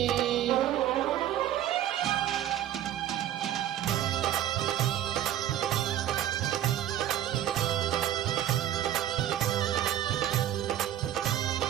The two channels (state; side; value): quieter; left; 11.9 dB